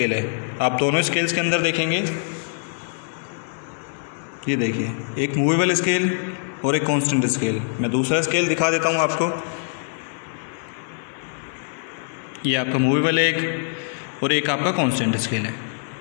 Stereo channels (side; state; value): right; silent; 62 dB below the other